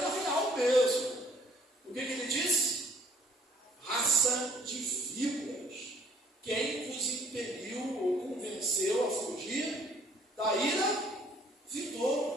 real mesmo. O que ele disse? Raça de víboras. Quem vos impeliu ou convenceu a fugir da ira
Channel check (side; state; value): both; normal; correlation 0.59